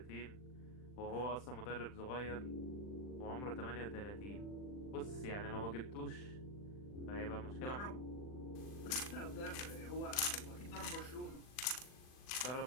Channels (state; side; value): late; right; 40 ms